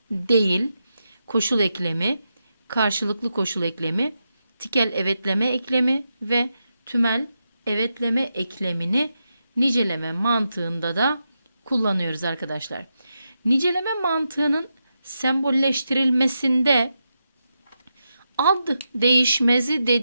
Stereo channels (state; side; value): inverted; both; correlation -0.87